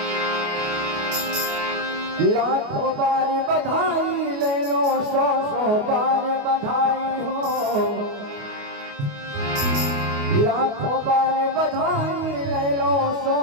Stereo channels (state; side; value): late; left; 29 ms